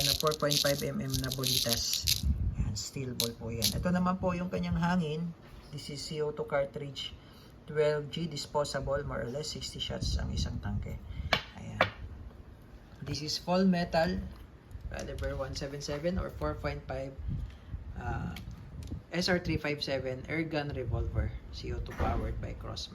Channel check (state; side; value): identical; both; correlation 1.00